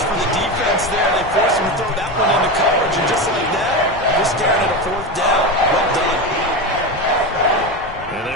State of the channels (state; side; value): noise; left; rumble, 18 dB below the sound